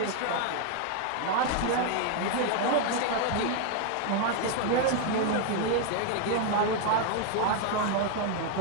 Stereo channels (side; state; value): both; different; correlation 0.00